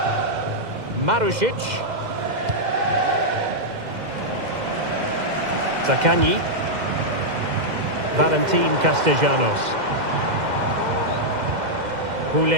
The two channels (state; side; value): late; left; 2.0 ms